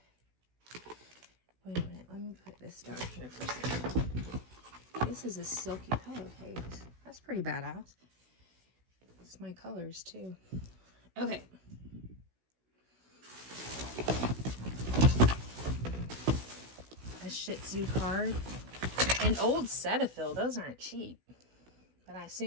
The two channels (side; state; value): left; late; 16 ms